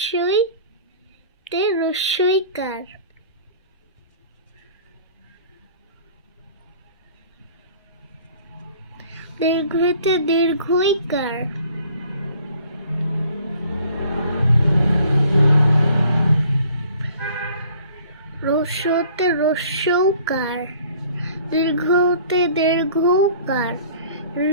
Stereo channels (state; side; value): inverted; both; correlation -0.53